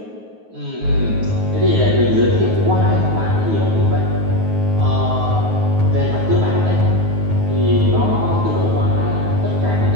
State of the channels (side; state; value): left; late; 9.4 ms